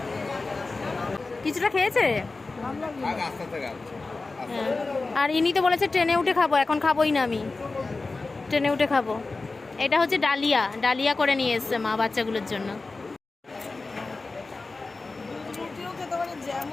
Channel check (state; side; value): quieter; right; 3.6 dB